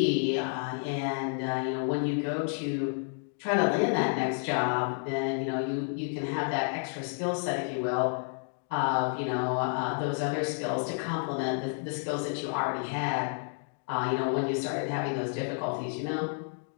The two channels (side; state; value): right; silent; 57 dB below the other